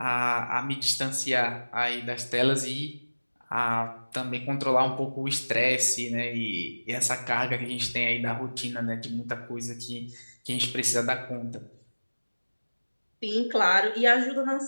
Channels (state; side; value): inverted; both; correlation -1.00